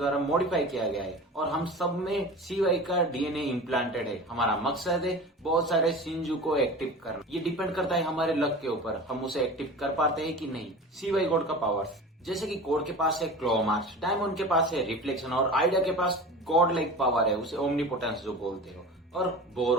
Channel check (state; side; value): normal; both; correlation 0.34